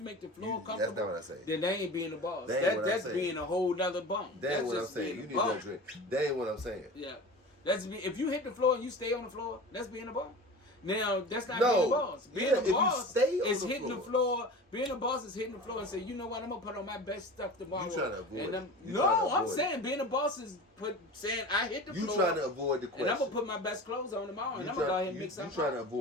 make the floor That's comfortable, not what I say. then that ain't being a boss. That ain't what I'm That's saying. being a whole nother bump. That ain't That's what I'm just saying. being You a need bum. that drink. That ain't what I'm saying. Yeah, if you hit the floor and you stay on the floor, that's being a boss. Now that's not No. being a boss. Being Yeah, a if you boss stay on is the hitting the floor. Being a boss is hitting the floor and say, you know what, I'm gonna put on my best stuff tomorrow. You trying to avoid and it. I'm, You no, trying to I'm avoid saying being a boss is saying I hit the You floor. trying to avoid the and question. I'm gonna put my best clothes on tomorrow, and You I'm gonna go ahead and you- make something. You trying to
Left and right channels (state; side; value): normal; both; correlation 0.34